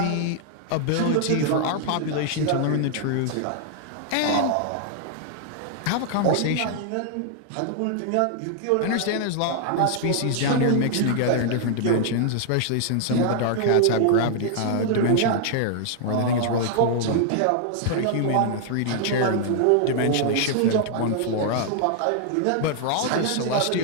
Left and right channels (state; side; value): different; both; correlation 0.00